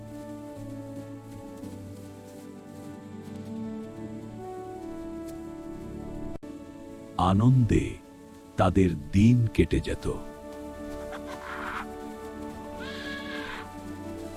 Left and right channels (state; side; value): identical; both; correlation 1.00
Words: আনন্দে তাদের দিন কেটে যেত।